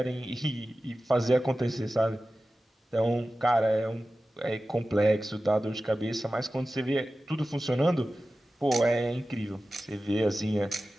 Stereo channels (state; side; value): normal; both; correlation 0.95